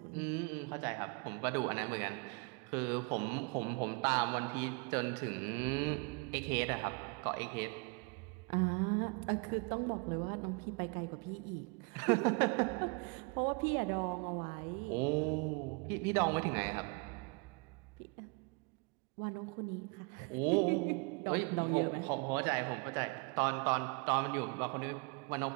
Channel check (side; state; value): left; quieter; 31.6 dB